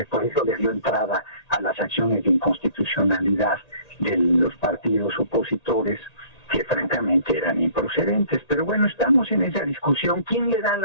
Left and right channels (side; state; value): right; late; 1.9 ms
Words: eso le dio entrada a las acciones de inconstitucionalidad de los partidos opositores, que francamente eran improcedentes. Pero bueno, estamos en esa discusión. ¿Quién le da